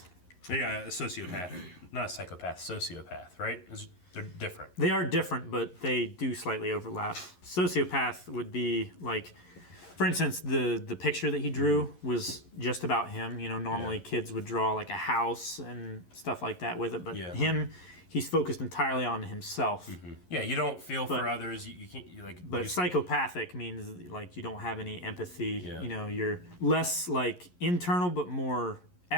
Yeah, a sociopath. Not a psychopath, sociopath, right? They're different. They are different, but they do slightly overlap. Sociopath would be like, for instance, the picture that he drew was just about him. You know, normally kids would draw like a house and stuff like that with it, but he's focused entirely on himself. Yeah, you don't feel for others. You can't But psychopathic means like you don't have any empathy. You know, you're less like internal, but more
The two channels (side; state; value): right; late; 11 ms